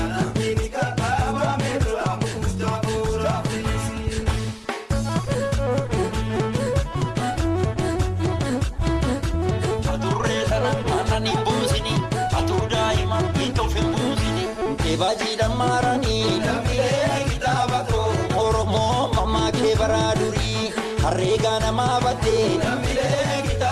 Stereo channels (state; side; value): identical; both; correlation 1.00